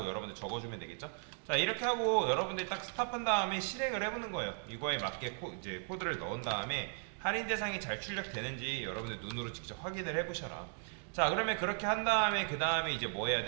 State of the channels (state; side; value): silent; left; 53 dB below the other